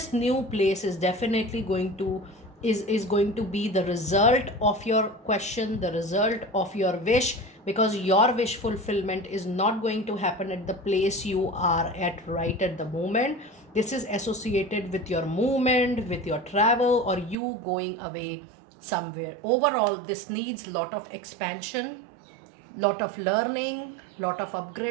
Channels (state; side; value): drops out; left; at 17.4 s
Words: new place is definitely going to is going to be the result of your question, the result of your wish, because your wish fulfillment is not going to happen at the place you are at right at the moment. This is associated with your movement, with your travel, or you going away somewhere. Overall, this needs lot of expansion, lot of learning, lot of